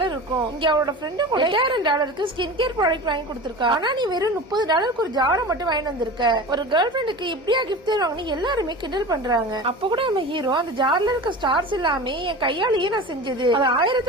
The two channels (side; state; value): both; normal; correlation 0.33